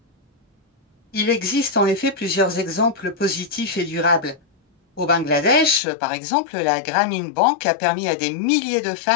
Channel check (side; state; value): right; drops out; at 5.8 s